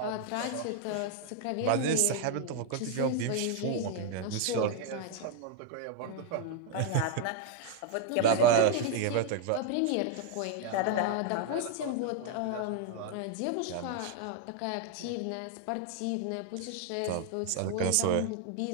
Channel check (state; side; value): different; both; correlation 0.00